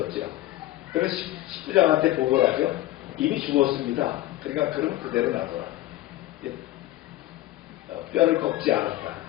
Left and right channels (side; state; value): right; quieter; 15.6 dB